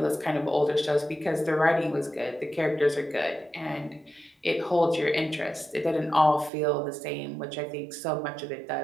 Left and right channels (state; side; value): drops out; left; at 6.5 s